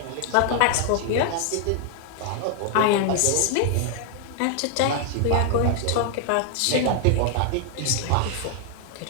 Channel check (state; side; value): different; both; correlation 0.00